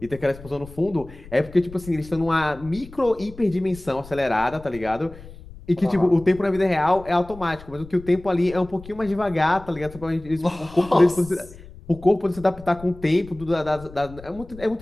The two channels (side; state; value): left; noise; rumble, 18 dB below the sound